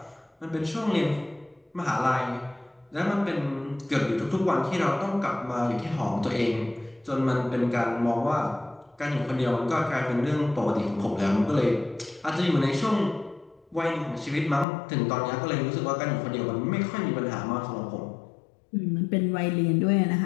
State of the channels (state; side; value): drops out; right; at 14.7 s